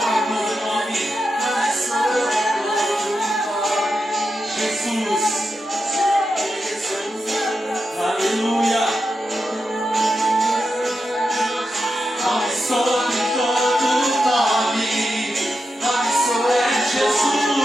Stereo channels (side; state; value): both; normal; correlation 0.88